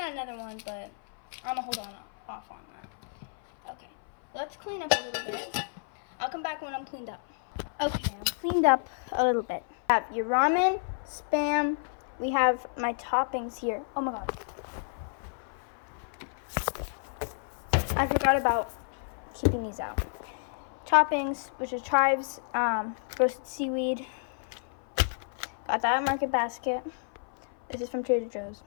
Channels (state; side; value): silent; right; 55 dB below the other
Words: another one, but I'm gonna hold off on that. Okay, let's clean up a little bit. I'll come back when I'm cleaned up. Okay, I'm cleaned up a little bit. I have your ramen, Spam. We have my toppings here. Oh my god. I forgot about keeping these out. Toppings, which is chives, roasted seaweed. Got that at Market Basket. This is from Trader Joe's.